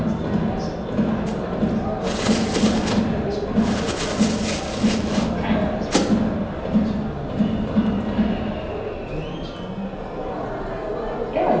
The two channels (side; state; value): both; identical; correlation 1.00